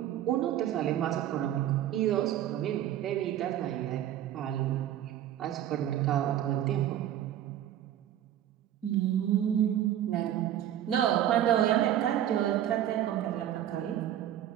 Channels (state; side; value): quieter; left; 11.5 dB